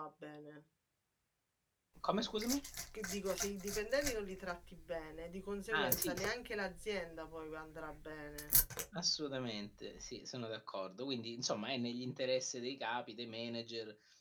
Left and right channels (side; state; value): both; identical; correlation 1.00